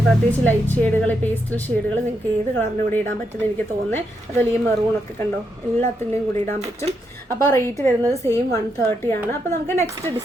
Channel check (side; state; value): both; normal; correlation 0.81